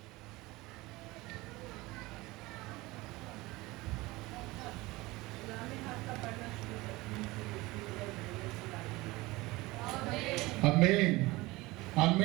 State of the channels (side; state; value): left; quieter; 21.0 dB